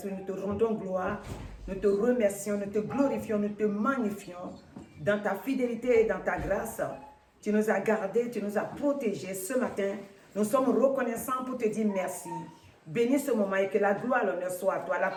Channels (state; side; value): identical; both; correlation 1.00